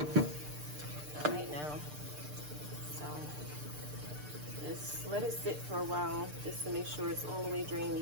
Just let it sit for a while just to make sure it's all the way drained.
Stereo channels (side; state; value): left; late; 6.7 ms